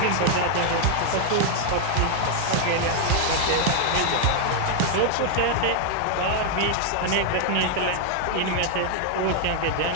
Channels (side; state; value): both; different; correlation 0.00